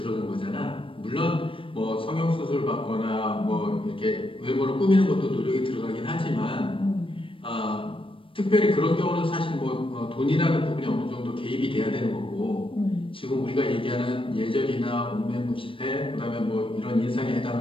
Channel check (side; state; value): right; late; 0.25 ms